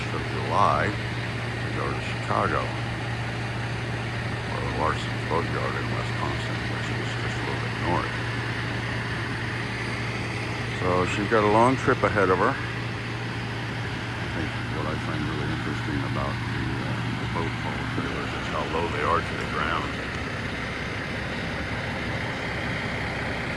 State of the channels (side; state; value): both; identical; correlation 1.00